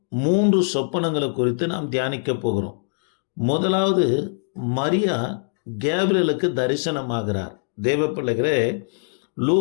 3 சொப்பனங்களை குறித்து நாம் தியானிக்க போகிறோம். முதலாவது, மரியா கேப்ரியலுக்கு தரிசனமாகிறார். தேவ பிள்ளைகளே,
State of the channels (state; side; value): silent; right; digital silence